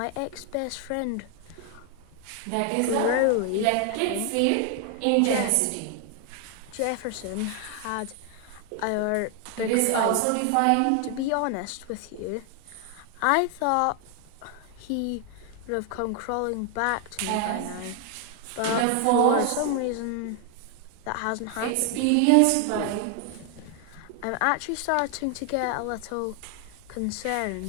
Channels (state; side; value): different; both; correlation 0.00